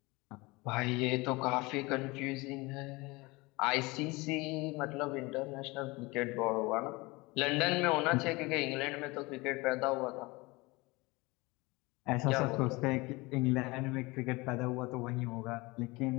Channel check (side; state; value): right; quieter; 23.8 dB